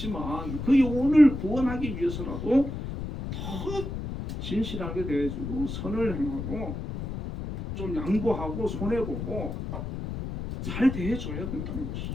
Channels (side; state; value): left; noise; rumble, 6 dB below the sound